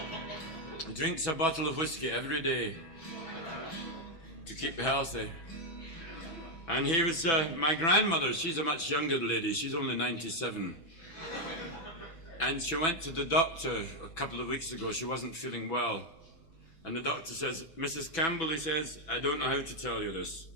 He drinks a bottle of whiskey every day to keep healthy. And he was, my grandmother, she's a much younger lady. She's only 97. And she went to the doctor a couple of weeks ago. She wasn't feeling well. And the doctor says, Mrs. Campbell, he says, I don't know how to tell you this.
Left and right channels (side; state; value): right; late; 6.1 ms